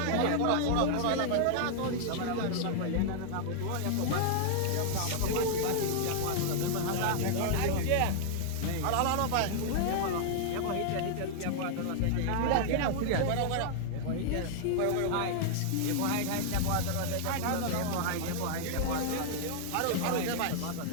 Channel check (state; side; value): different; both; correlation -0.01